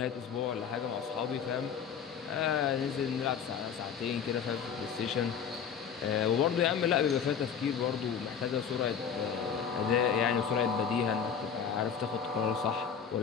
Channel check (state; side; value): quieter; right; 7.3 dB